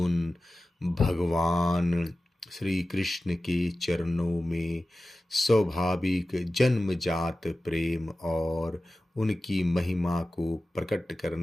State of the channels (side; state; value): both; normal; correlation 0.95